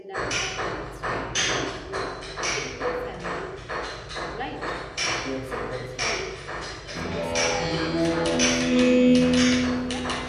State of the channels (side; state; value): both; identical; correlation 1.00